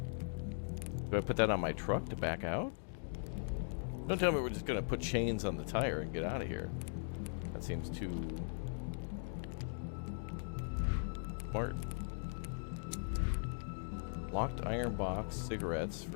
Do I put that on my truck to back out? Don't tell me we're just gonna put chains on the tire and get out of here. That seems too smart. Locked iron box, cigarettes,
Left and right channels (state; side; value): silent; right; digital silence